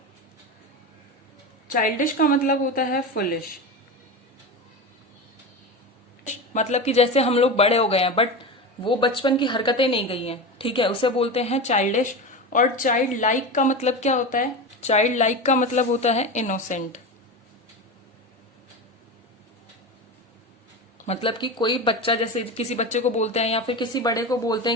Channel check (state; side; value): normal; both; correlation 0.23